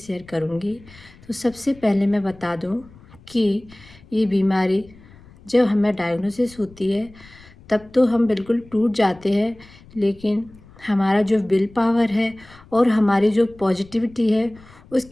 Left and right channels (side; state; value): left; noise; rumble, 24 dB below the sound